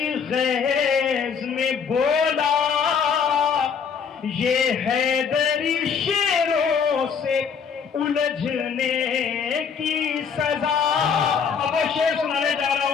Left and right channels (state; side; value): quieter; right; 6.5 dB